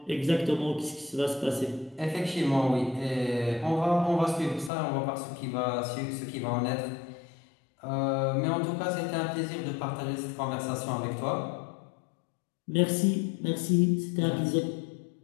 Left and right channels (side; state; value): right; drops out; at 4.7 s